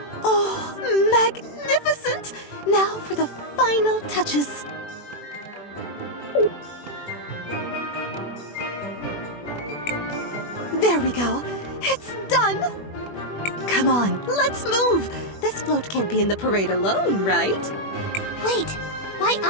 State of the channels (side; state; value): right; late; 21 ms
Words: Oh, magnificent! Now for the final touches. There we go. It's done! Come on, let's move! This float can't be in the parade alone, right? Wait, why